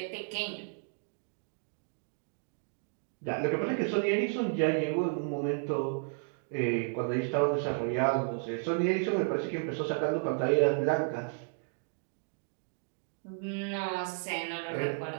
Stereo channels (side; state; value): left; silent; 56 dB below the other